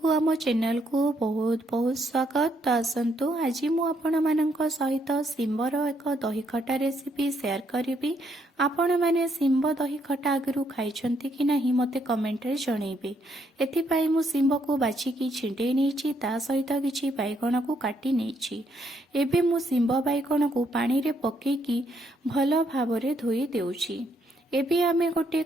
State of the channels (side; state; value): both; normal; correlation 0.73